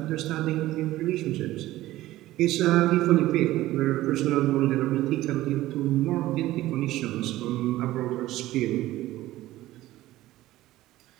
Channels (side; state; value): left; quieter; 16.0 dB